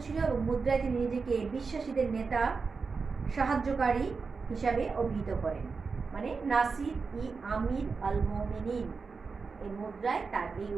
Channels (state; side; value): quieter; left; 4.8 dB